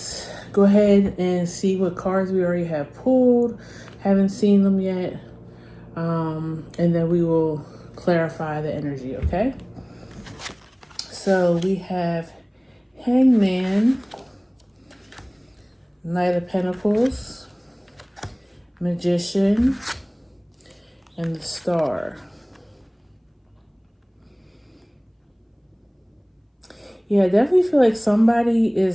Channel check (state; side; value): identical; both; correlation 1.00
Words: go ahead and see what cards we already have pulled. Haven't seen them yet. And then we will clarify the energy, okay? So we have Hangman, Knight of Pentacles, Magician, and the Star. Yeah, I definitely feel like somebody